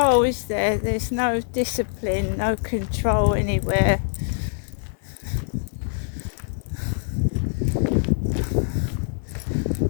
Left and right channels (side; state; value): right; silent; 63 dB below the other